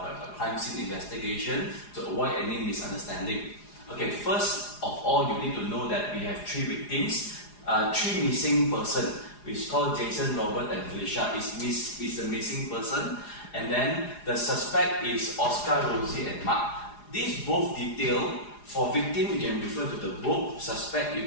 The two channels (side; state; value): right; late; 4.9 ms